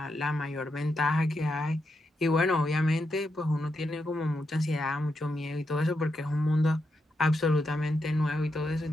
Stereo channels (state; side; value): normal; both; correlation 0.84